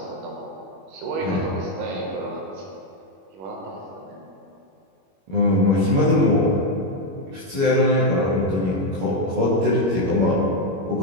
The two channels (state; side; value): late; left; 21 ms